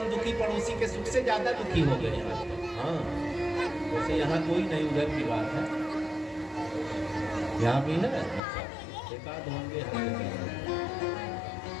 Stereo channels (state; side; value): drops out; right; at 8.4 s